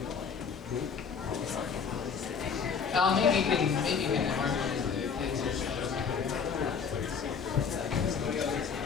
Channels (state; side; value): quieter; right; 6.2 dB